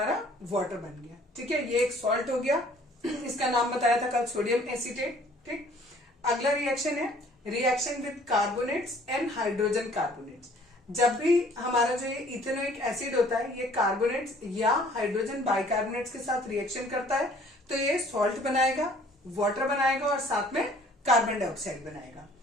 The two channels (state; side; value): normal; both; correlation 0.55